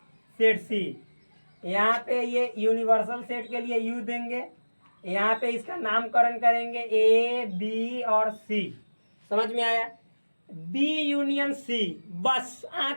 set C. यहाँ पे ये यूनिवर्सल सेट के लिए यू देंगे, यहाँ पे इसका नामकरण करेंगे ए बी और सी। समझ में आया। बी यूनियन सी, बस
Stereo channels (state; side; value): inverted; both; correlation -1.00